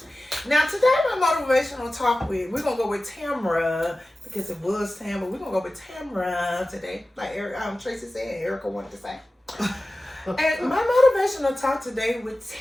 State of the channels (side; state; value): both; normal; correlation 0.96